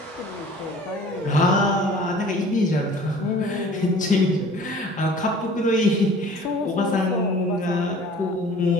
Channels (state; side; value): normal; both; correlation 0.47